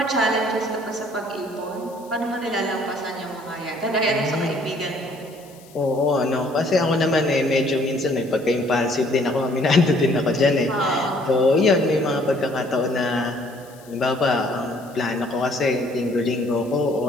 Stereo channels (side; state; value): left; noise; hiss, 25 dB below the sound